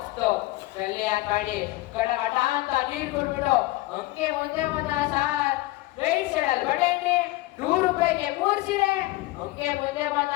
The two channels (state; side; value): quieter; right; 19.0 dB